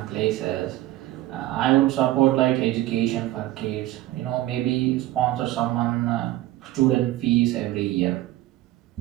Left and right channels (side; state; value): left; quieter; 16.0 dB